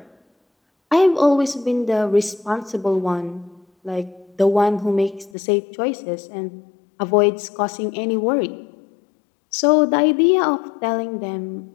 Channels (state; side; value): drops out; right; at 5.3 s